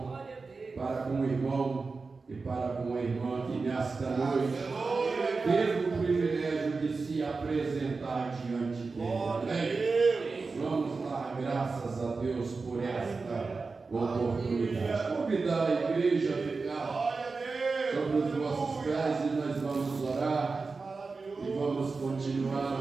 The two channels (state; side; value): quieter; left; 4.2 dB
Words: para com o irmão e para com a irmã que nesta noite teve o privilégio de se apresentar diante dele. Vamos dar graças a Deus por esta oportunidade. Convidar a igreja a ficar sobre os vossos pés e nós vamos orar e vamos